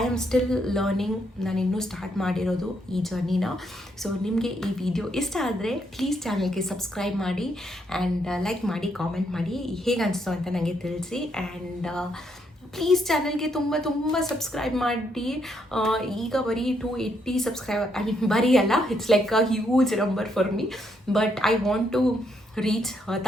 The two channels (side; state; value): both; normal; correlation 0.75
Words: am still learning, ನಾನು ಇನ್ನೂ ಸ್ಟಾರ್ಟ್ ಮಾಡಿರೋದು ಈ ಜರ್ನಿನ. ಸೊ ನಿಮಗೆ ಈ ವಿಡಿಯೋ ಇಷ್ಟ ಆದರೆ ಪ್ಲೀಸ್ ಚಾನಲ್ಗೆ ಸಬ್ಸ್ಕ್ರೈಬ್ ಮಾಡಿ, ಆ್ಯಂಡ್ ಲೈಕ್ ಮಾಡಿ, ಕಾಮೆಂಟ್ ಮಾಡಿ, ಹೇಗೆ ಅನಿಸ್ತು ಅಂತ ನನಗೆ ತಿಳಿಸಿ. ಆ್ಯಂಡ್ ಪ್ಲೀಸ್ ಚಾನಲ್ಗೆ ತುಂಬ ಸಬ್ಸ್ಕ್ರೈಬ್ ಮಾಡಿ. ಈಗ ಬರೀ 280 ಸಬ್ಸ್ಕ್ರೈಬರ್, ಐ ಮೀನ್ ಬರೀ ಅಲ್ಲ, it's like a huge number for me, but I want to reach